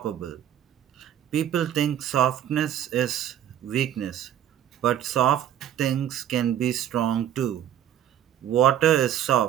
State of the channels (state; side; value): quieter; left; 10.6 dB